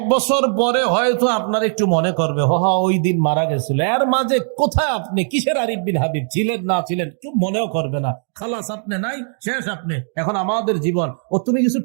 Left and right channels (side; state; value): left; silent; 63 dB below the other